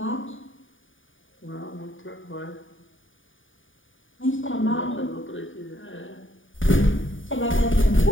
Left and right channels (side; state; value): right; late; 0.57 ms